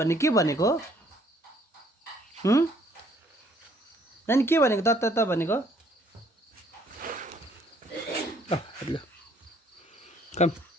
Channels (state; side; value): normal; both; correlation 0.63